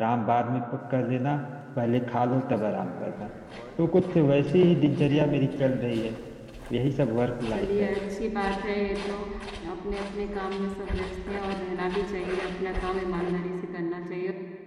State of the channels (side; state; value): both; identical; correlation 1.00